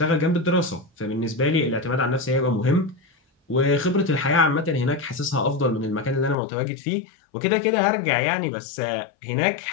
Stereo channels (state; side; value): drops out; right; at 6.4 s